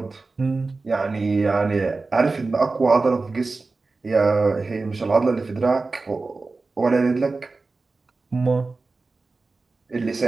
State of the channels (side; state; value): left; quieter; 3.7 dB